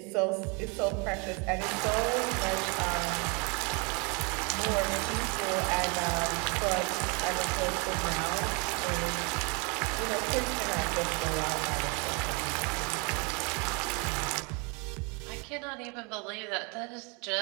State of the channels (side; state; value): left; quieter; 31.9 dB